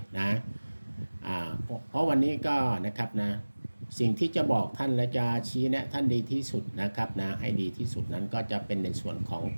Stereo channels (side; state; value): both; inverted; correlation -1.00